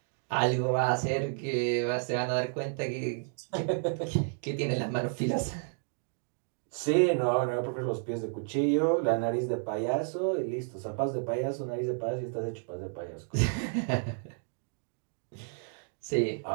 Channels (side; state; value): left; silent; 57 dB below the other